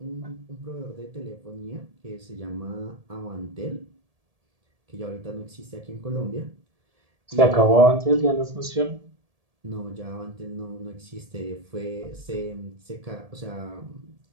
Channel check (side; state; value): left; late; 1.7 ms